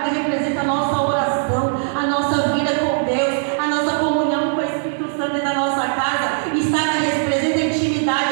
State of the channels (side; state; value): left; silent; 66 dB below the other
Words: representa a nossa oração, a nossa vida com Deus, a nossa comunhão com o Espírito Santo dentro da nossa casa. Estaca representa a